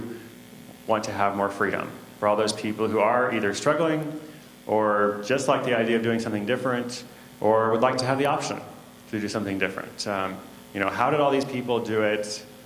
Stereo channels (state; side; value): identical; both; correlation 1.00